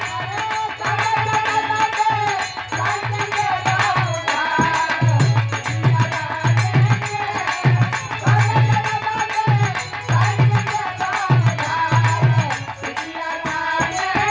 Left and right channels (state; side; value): identical; both; correlation 1.00